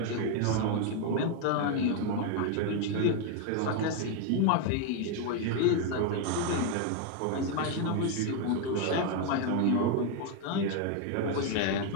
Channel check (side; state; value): both; different; correlation 0.01